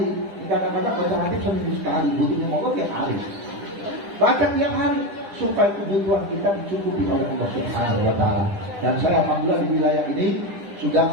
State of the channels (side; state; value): left; late; 10 ms